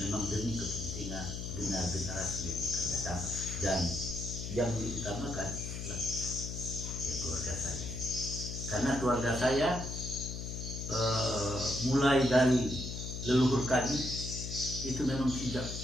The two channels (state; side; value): noise; left; hum, 6 dB below the sound